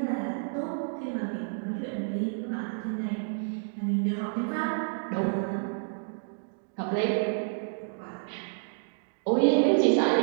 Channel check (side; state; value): left; silent; digital silence